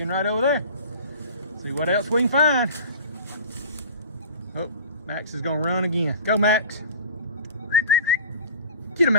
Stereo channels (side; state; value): both; inverted; correlation -0.40